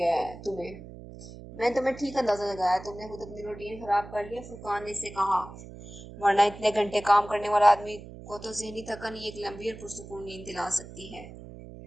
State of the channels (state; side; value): noise; right; hum, 15 dB below the sound